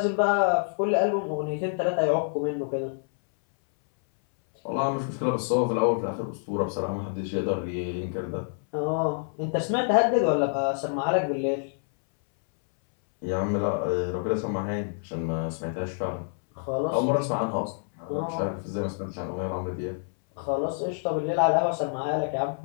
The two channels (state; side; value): silent; right; 60 dB below the other